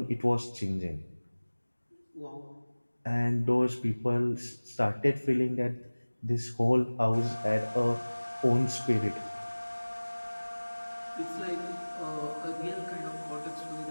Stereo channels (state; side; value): inverted; both; correlation -1.00